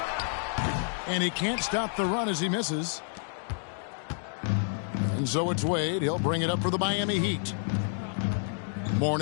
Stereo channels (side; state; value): right; silent; digital silence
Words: And he can't stop the run as he misses. And so it's Wade. He'll bring it up for the Miami Heat.